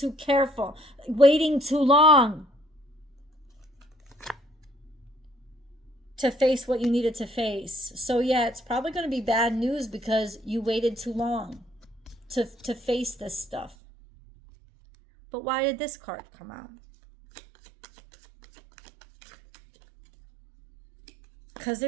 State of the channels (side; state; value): left; drops out; at 13.8 s